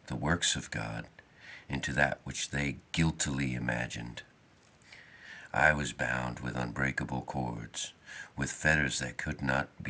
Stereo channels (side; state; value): both; identical; correlation 1.00